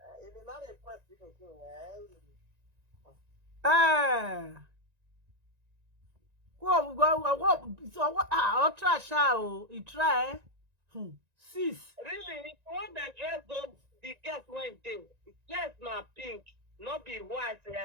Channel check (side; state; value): left; late; 1.9 ms